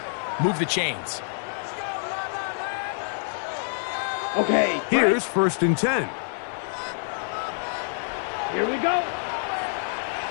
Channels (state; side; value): silent; right; digital silence